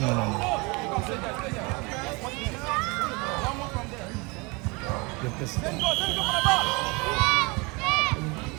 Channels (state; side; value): quieter; left; 27.6 dB